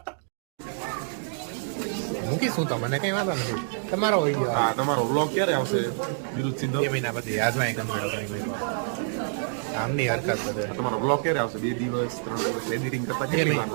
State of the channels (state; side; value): silent; left; digital silence